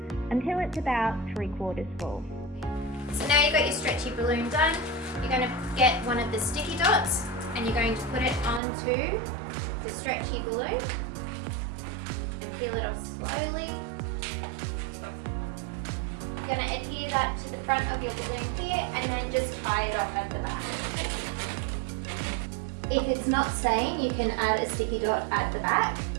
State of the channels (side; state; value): left; drops out; at 8.6 s